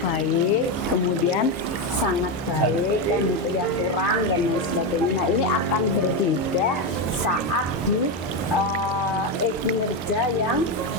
baik, kemudian sangat baik, kan gitu ya, kurang dan lain sebagainya. Nah, ini akan berbeda saat di kinerja yang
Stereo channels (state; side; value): normal; both; correlation 0.10